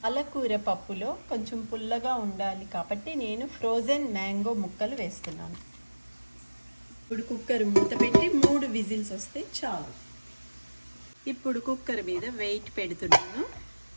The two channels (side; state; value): both; inverted; correlation -1.00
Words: పాలకూర పప్పులో కొంచెం పుల్లగా ఉండాలి కాబట్టి నేను ఫ్రోజన్ మ్యాంగో ముక్కలు వేస్తున్నాను. ఇప్పుడు కుక్కర్ మూత పెట్టి 3 విజిల్స్ వస్తే చాలు. ఇప్పుడు కుక్కర్ మీద వెయిట్ పెడుతున్నాను,